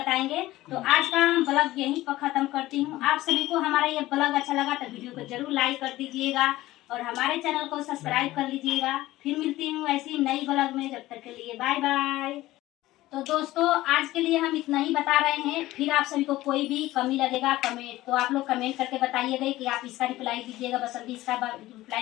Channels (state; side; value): quieter; right; 16.8 dB